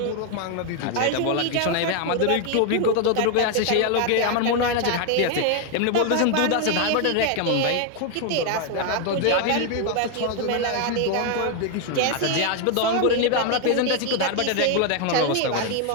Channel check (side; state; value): both; different; correlation 0.01